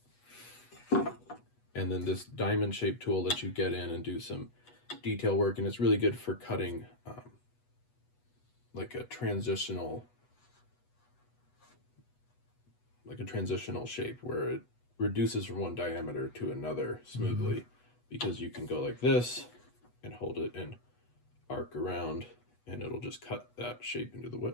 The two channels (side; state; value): right; late; 8.2 ms